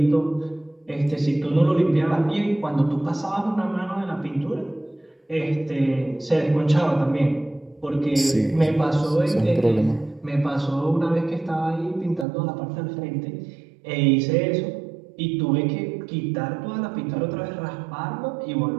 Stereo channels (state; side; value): drops out; left; at 12.2 s